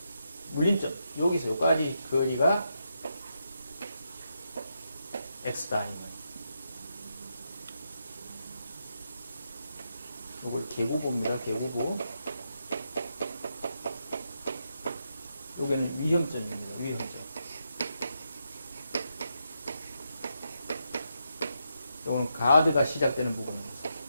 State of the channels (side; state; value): both; inverted; correlation -0.83